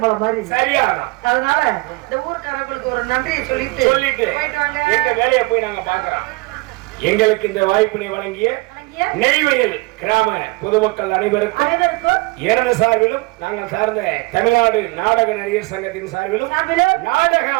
மாதிரி சரியா. அதனால இந்த ஊர்க்காரங்களுக்கு ஒரு நன்றியை சொல்லிட்டு போயிட்டு வாங்க. எங்க வேலையை போய் நாங்க பாக்குறோம். எங்களுக்கு இந்த வாய்ப்பினை வழங்கிய நெய்வேலி கிராம பொதுமக்கள் அனைவருக்கும் எனது சார்பிலும் நாங்கள் சார்ந்த தமிழ்நாடு நாடக நடிகர் சங்கத்தின் சார்பிலும் நாடக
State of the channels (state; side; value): quieter; left; 25.0 dB